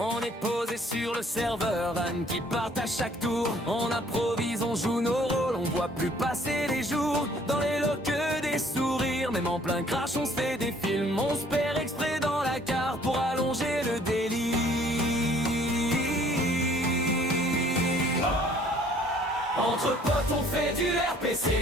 est posé sur le serveur, vannes qui partent à chaque tour. On improvise, on joue nos rôles, on voit plus passer les jours. Dans les lots que des sourires, même en plein crash on se fait des films. On se perd exprès dans la carte pour allonger le délire. Entre potes on fait du RP,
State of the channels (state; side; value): normal; both; correlation 0.58